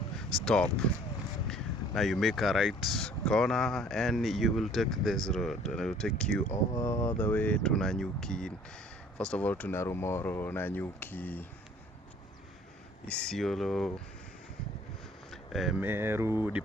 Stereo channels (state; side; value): normal; both; correlation 0.54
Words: stop. Now you make a right corner and you will take this road, and it will take you all the way to Nanyuki. First of all to Narumoro, Nanyuki, Isiolo, Meru,